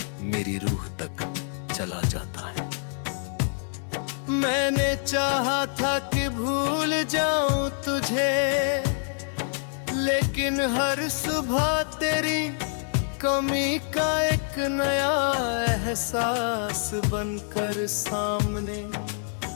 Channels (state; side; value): silent; right; 61 dB below the other